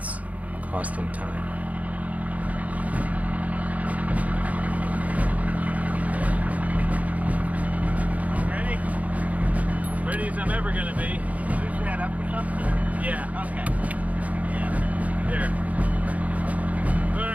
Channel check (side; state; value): left; late; 0.071 ms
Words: costing time. Ready as I'm ever going to be. Push that up or something? Yeah. Okay. Yeah. There.